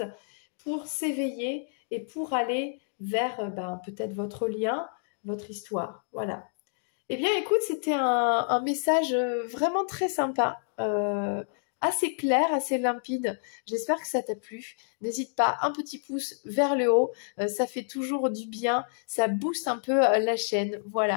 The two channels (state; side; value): silent; right; digital silence